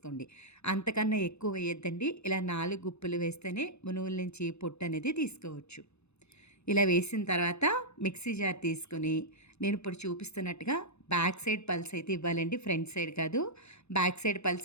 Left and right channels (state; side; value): late; right; 0.81 ms